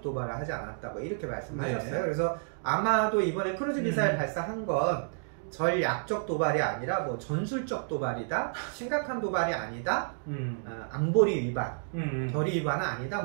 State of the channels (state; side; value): silent; left; digital silence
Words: 도발을 하지 않았다, 뭐 이렇게 말씀하셨어요. 그래서 아마도 이번에 크루즈 미사일 발사한 건 전략적 도발이 아니라 뭐 전술적 도발이다, 심각한 도발이 아니다, 안보리 위반, 결의 위반은 아니다,